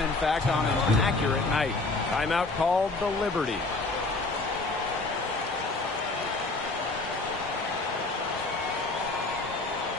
in fact, on an accurate night. Timeout called the Liberty.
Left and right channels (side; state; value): right; quieter; 3.3 dB